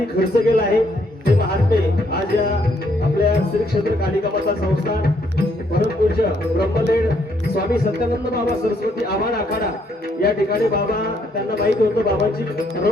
खर्च केला आहे ते महात्मे आज या आपल्या श्री क्षेत्र कालिका माता संस्थान परमपूज्य ब्रह्मलीन स्वामी सत्यानंद बाबा सरस्वती आव्हान आखाडा या ठिकाणी बाबा त्यांना माहिती होतं बाबांची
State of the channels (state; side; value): normal; both; correlation 0.70